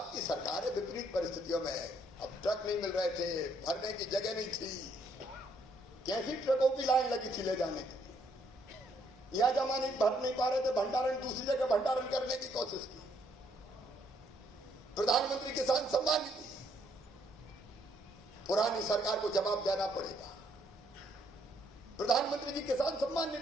सरकार है विपरीत परिस्थितियों में। अब ट्रक नहीं मिल रहे थे, भरने की जगह नहीं थी, कैसी ट्रकों की लाइन लगी थी ले जाने की। यह जमा नहीं भर नहीं पा रहे थे, भंडारण दूसरी जगह भंडारण करने की कोशिश की। प्रधानमंत्री किसान सम्मान निधि, पुरानी सरकार को जवाब देना पड़ेगा। प्रधानमंत्री जी किसान सम्मान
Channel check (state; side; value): normal; both; correlation 0.70